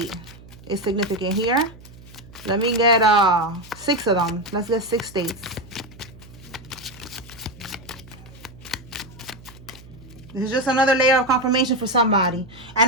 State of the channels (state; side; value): noise; right; hum, 20 dB below the sound